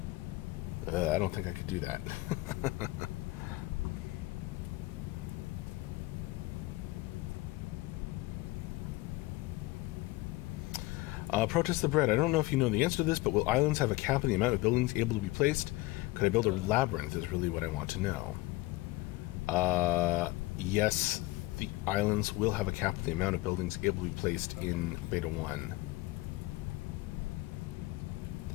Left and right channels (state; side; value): quieter; right; 19.6 dB